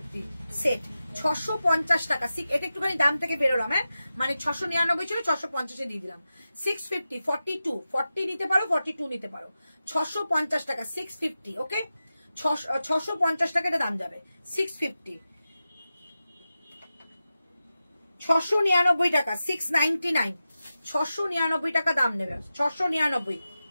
সেট, 650 টাকা। এটা একটুখানি দাম থেকে বেরোলাম, হ্যাঁ মানে 699 ছিল, 650-এ দিয়ে দিলাম। 650, 42, 40 নিতে পারো, 42 নিতে পারো। 650 টাকা, 650, ওকে। 650 টাকা এটা দাম যাবে, 650। 699 টাকা, 699, 699 টাকা দাম নেবে। 699,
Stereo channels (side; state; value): both; inverted; correlation -0.93